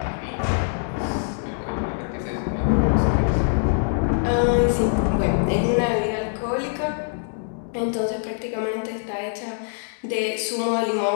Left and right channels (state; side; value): silent; right; digital silence